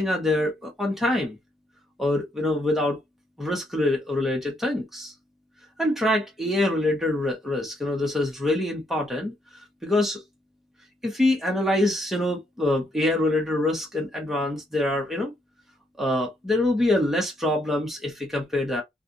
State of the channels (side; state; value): both; normal; correlation 0.74